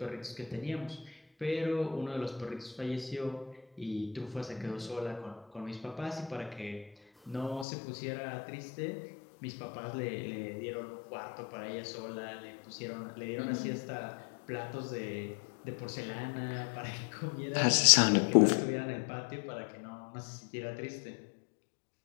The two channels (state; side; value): drops out; right; at 7.7 s